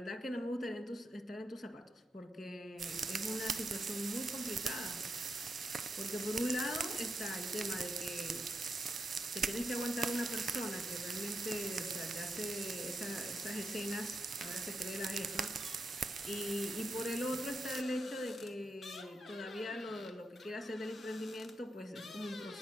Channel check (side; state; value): both; normal; correlation 0.85